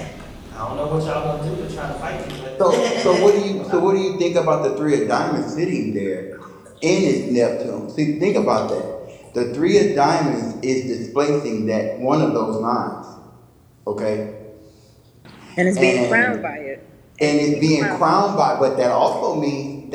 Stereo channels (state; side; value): identical; both; correlation 1.00